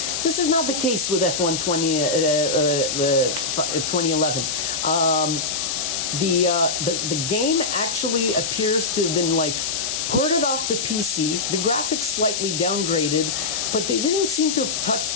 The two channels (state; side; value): noise; left; hiss, 1 dB below the sound